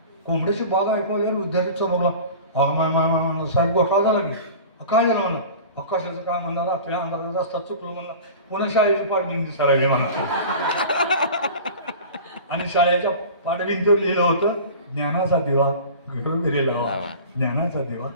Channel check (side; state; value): both; inverted; correlation -0.37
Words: कोंबड्याची बाग ऐकवल्यावर विद्यार्थी चमकला. साहेब घोटाळा झाला की काय झालं म्हणा. कशाचं काय म्हणणार रात्री अंधारात रस्ता चुकलो म्हणला. पुन्हा शाळेची पाठभिंती सरायली म्हणा. आणि शाळेच्या पाठभिंतीवर लिहिलं होतं ज्ञानाचा दिवा घरोघरी लावा. ज्ञानाचा दिवा